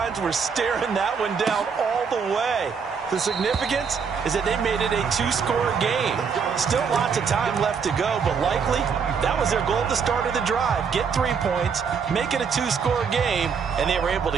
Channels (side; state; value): left; quieter; 6.1 dB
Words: were staring that one down all the way. The significance is that they made it a 2-score game. Still lots of time left to go, but likely that was their goal at the start of the drive. Get 3 points, make it a 2-score game, and they were able to